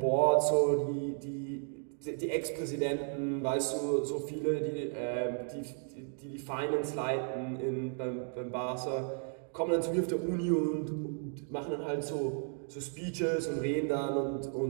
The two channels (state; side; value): silent; left; 55 dB below the other